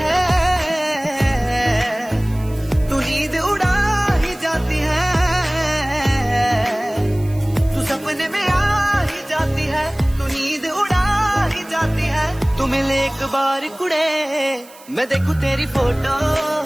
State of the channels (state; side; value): noise; right; hiss, 23 dB below the sound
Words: है तू नींद उड़ा ही जाती है तू सपने में आ ही जाती है तू नींद उड़ा ही जाती है तू मिले एक बार कुड़े मैं देखूं तेरी फोटो